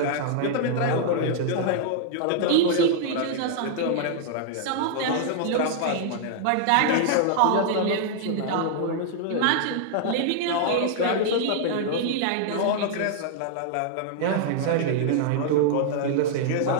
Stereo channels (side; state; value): both; different; correlation -0.01